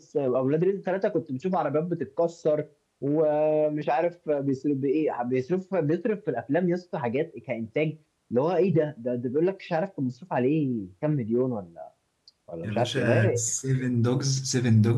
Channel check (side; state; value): both; identical; correlation 1.00